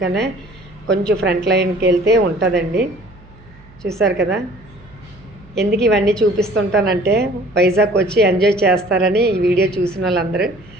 కొంచెం ఫ్రంట్ లైన్కి వెళ్తే ఉంటుందండి. చూసారు కదా. ఎందుకు ఇవన్నీ చూపిస్తుంటానంటే వైజాగ్ వచ్చి ఎంజాయ్ చేస్తారని ఈ వీడియో చూసిన వాళ్ళందరూ,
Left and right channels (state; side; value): noise; right; hum, 25 dB below the sound